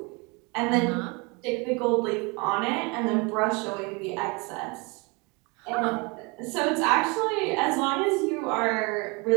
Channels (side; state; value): left; quieter; 28.6 dB